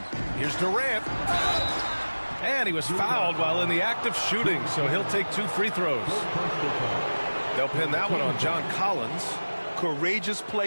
Here's Durant. And he was fouled while in the act of shooting, so he'll take 2 free throws. They'll pin that one on John Collins. Courageous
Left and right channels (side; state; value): both; inverted; correlation -1.00